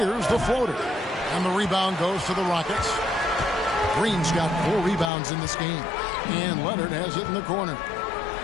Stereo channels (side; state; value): right; drops out; at 5.1 s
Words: the floater. And the rebound goes to the Rockets. Green's got 4 rebounds in this game. And Leonard has it in the corner.